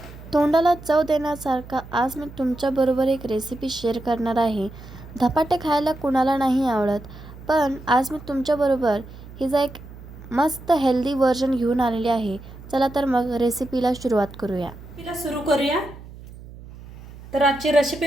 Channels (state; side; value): noise; right; hum, 16 dB below the sound